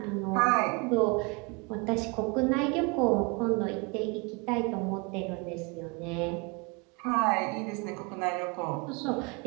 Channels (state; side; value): quieter; left; 29.8 dB